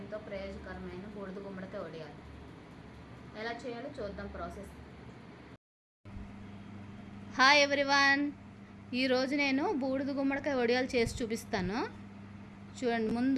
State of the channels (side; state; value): both; identical; correlation 1.00